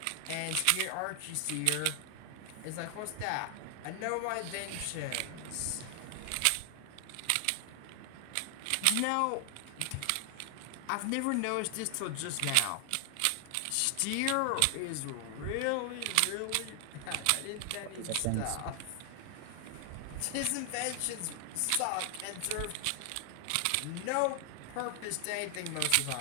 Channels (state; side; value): different; both; correlation 0.00